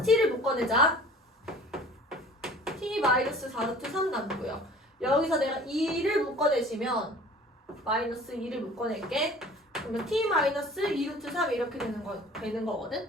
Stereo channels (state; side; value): normal; both; correlation 0.46